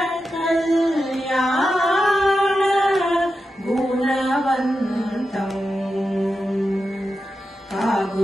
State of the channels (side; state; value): both; normal; correlation 0.90